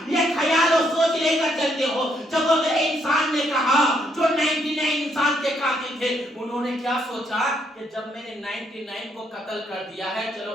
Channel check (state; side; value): normal; both; correlation 0.73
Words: یہ خیال اور سوچ لے کر چلتے ہو۔ جب وہ انسان نے کہا جو 99 انسان کے قاتل تھے، انہوں نے کیا سوچا کہ جب میں نے 99 کو قتل کر دیا ہے، چلو